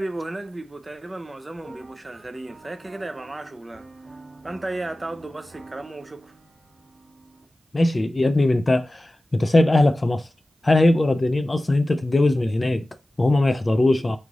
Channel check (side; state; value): both; normal; correlation 0.96